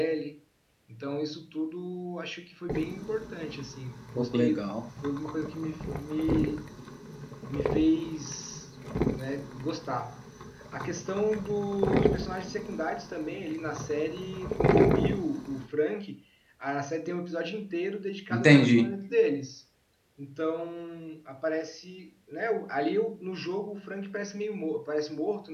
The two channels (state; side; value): identical; both; correlation 1.00